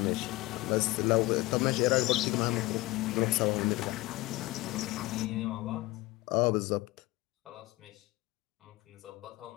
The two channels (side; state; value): right; quieter; 20.4 dB